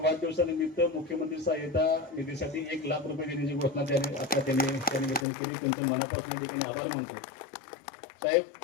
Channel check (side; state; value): right; drops out; at 5.2 s